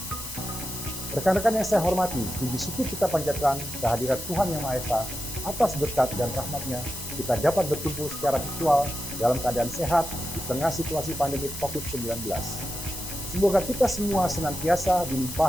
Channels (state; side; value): noise; left; hiss, 9 dB below the sound